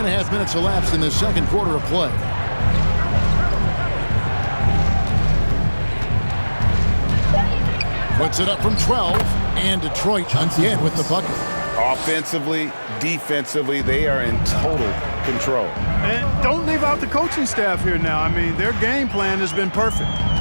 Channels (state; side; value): inverted; both; correlation -1.00